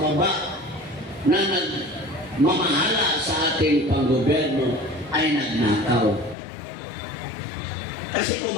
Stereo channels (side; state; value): right; drops out; at 6.4 s